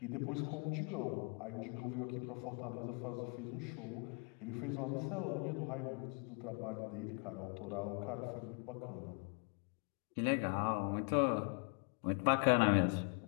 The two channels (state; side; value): quieter; right; 36.2 dB